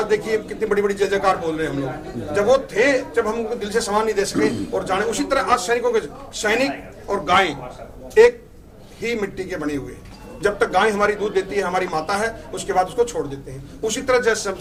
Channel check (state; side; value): identical; both; correlation 1.00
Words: देखिए कितनी बड़ी बड़ी जय जयकार बोल रहे हैं हम लोग। जब वो थे, जब हम उनको दिल से सम्मान नहीं दे सके और जाने, उसी तरह आज सैनिकों के, सैनिक और गाय एक ही मिट्टी के बने हुए हैं। जब तक गाय हमारी दूध देती है, हमारी माता है, उसके बाद उसको छोड़ देते हैं। उसी तरह जैसे